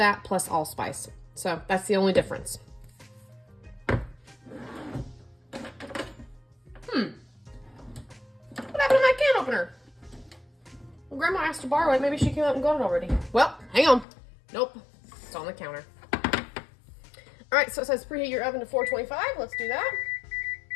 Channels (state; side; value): drops out; right; at 14.1 s